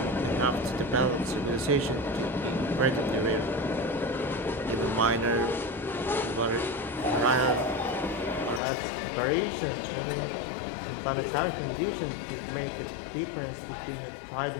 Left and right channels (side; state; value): right; drops out; at 8.6 s